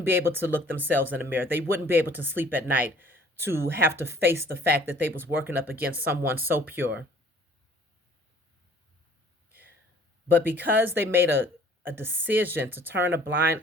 be able to look themselves in the mirror. They wouldn't be able to sleep at night to have to face the fact that they was working up against someone so pure. But because they made a decision to turn a blind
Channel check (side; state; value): both; normal; correlation 0.55